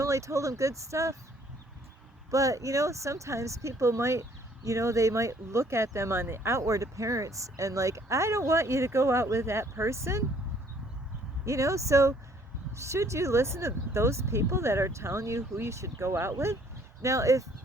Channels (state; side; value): normal; both; correlation 0.61